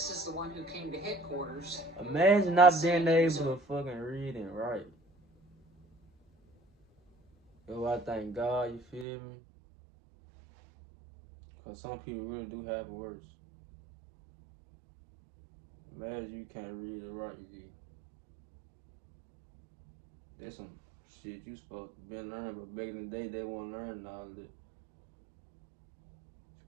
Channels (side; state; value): left; drops out; at 9.1 s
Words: is the one who came to headquarters. Imagine not being able to fucking read and write. Yo, I thank God, you feel me? Because some people really do have it worse. Imagine you can't read or write, you. There's some shit you supposed to be learning, but back in the day, they weren't learning all of it. It's